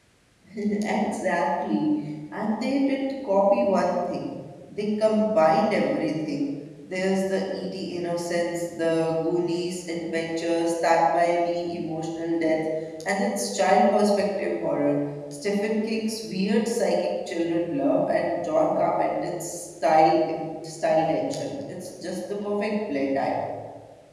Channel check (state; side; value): identical; both; correlation 1.00